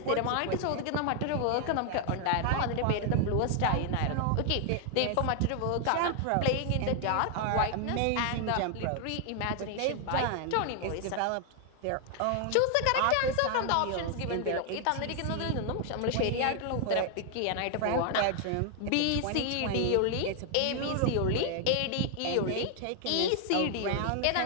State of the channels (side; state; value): both; different; correlation 0.00